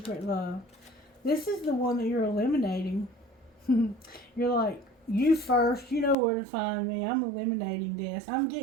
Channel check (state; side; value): drops out; left; at 6.2 s